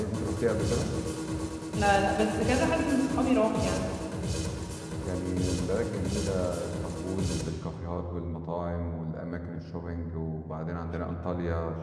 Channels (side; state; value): both; identical; correlation 1.00